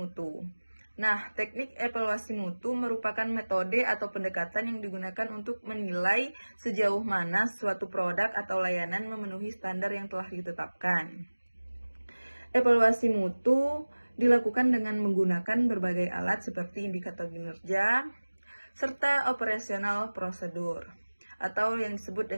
Nah, teknik evaluasi mutu merupakan metode atau pendekatan yang digunakan untuk menilai sejauh mana suatu produk atau layanan memenuhi standar yang telah ditetapkan. Evaluasi mutu dilakukan dengan menggunakan berbagai alat seperti indikator kinerja, serta operasional prosedur, atau yang disebut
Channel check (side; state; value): both; inverted; correlation -1.00